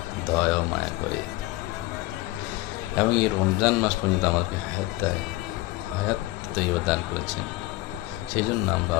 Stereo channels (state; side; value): quieter; right; 18.9 dB